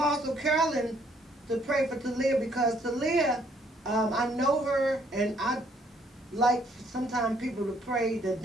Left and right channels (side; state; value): both; normal; correlation 0.66